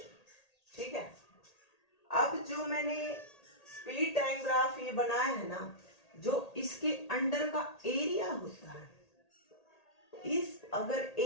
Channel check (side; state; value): right; late; 1.8 ms